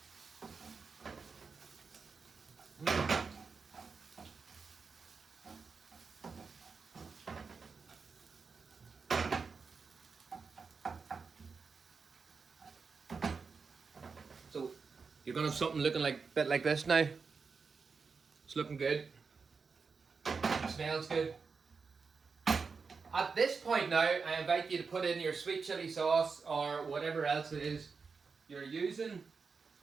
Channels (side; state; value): left; quieter; 5.0 dB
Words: So you're gonna have something looking like a bit like this now. It's looking good. It smells good. At this point now, I invite you to put in your sweet chili sauce or whatever else it is you're using.